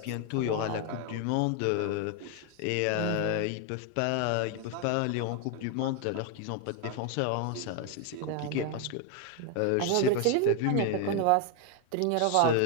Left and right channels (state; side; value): different; both; correlation 0.01